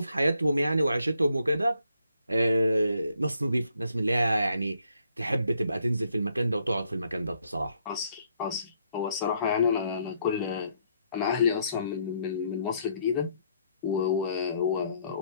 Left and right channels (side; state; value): both; inverted; correlation -0.71